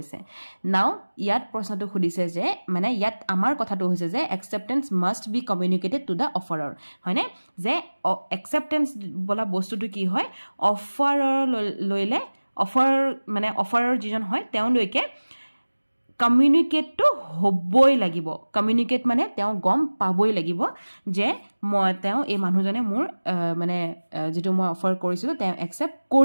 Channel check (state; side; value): inverted; both; correlation -1.00